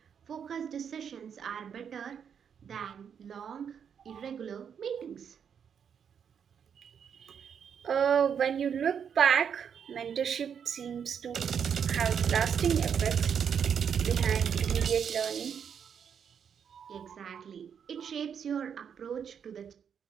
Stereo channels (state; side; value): quieter; left; 7.6 dB